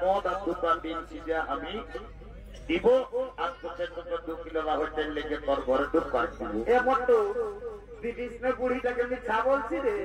মদ আর 2টা ডিম সিজা আমি দিব। আর তোকে 2 কিলো রাহতের লেগে তোর ঘরে ঢুকবার দিব। এ মতো দিদিস না বুড়িটাকে মিথ্যা বলছি রে?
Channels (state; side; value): identical; both; correlation 1.00